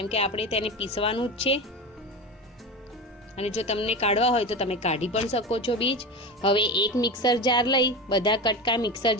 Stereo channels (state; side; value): normal; both; correlation 0.24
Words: કે આપણે તેને પીસવાનું જ છે. અને જો તમને કાઢવા હોય તો તમે કાઢી પણ શકો છો બીજ. હવે એક મિક્સર જાર લઈ બધા કટકા મિક્સર